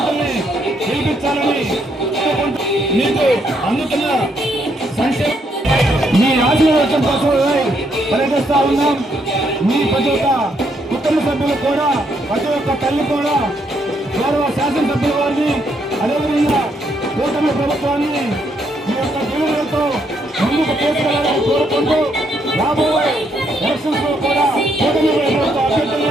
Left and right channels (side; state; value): both; normal; correlation 0.74